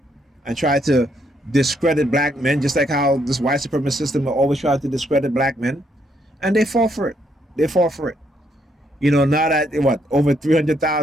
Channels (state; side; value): normal; both; correlation 0.73